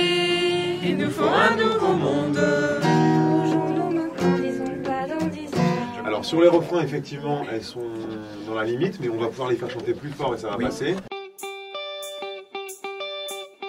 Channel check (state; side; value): identical; both; correlation 1.00